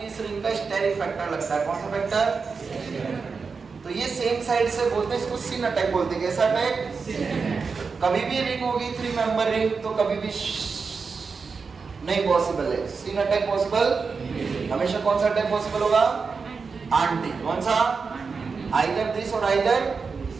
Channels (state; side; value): quieter; left; 5.0 dB